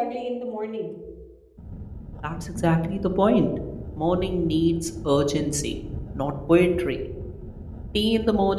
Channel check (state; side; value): identical; both; correlation 1.00